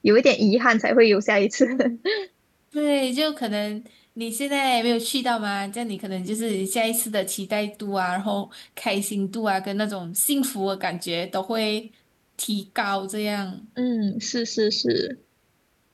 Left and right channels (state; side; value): identical; both; correlation 1.00